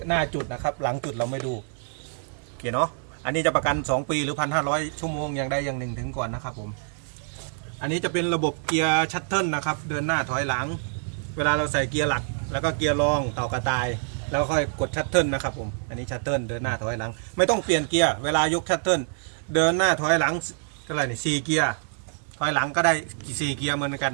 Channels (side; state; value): left; silent; 61 dB below the other